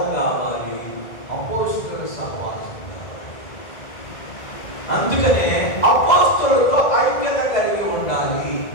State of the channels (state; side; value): late; right; 2.0 ms